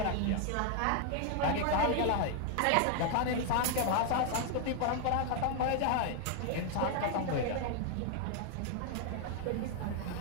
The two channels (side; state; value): both; different; correlation 0.00